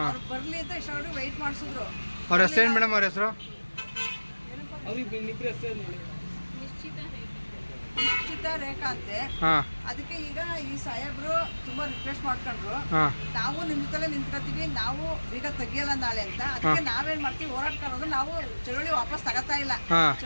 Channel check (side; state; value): both; inverted; correlation -1.00